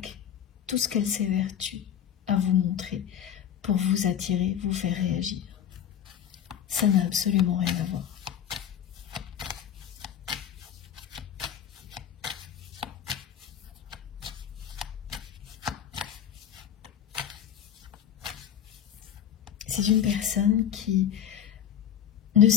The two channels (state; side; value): quieter; right; 9.6 dB